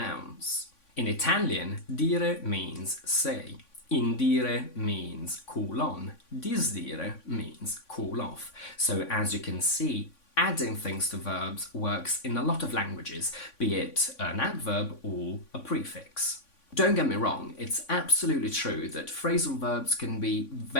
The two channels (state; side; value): late; right; 3.5 ms